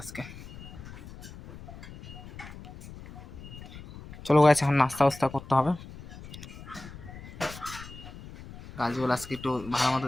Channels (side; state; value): left; noise; rumble, 15 dB below the sound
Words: আজকে। চলো গাইস, এখন নাস্তা বাস্তা করতে হবে। গাছগুলো আজকে একটু ভালো মতো